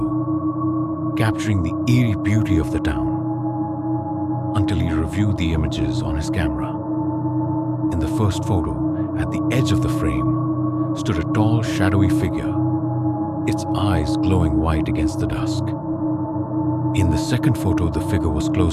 capturing the eerie beauty of the town, until he reviewed the images on his camera. In the first photo, at the edge of the frame, stood a tall, shadowy figure, its eyes glowing white against the dusk. In the second photo, the figure was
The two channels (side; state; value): both; identical; correlation 1.00